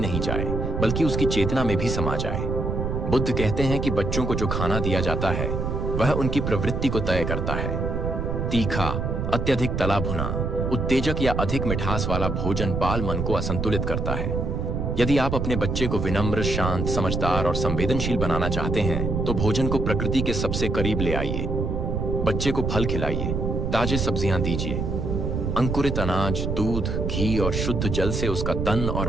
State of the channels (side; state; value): right; noise; rumble, 1 dB below the sound